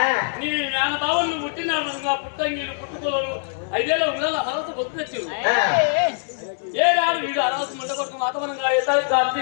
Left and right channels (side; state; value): right; silent; digital silence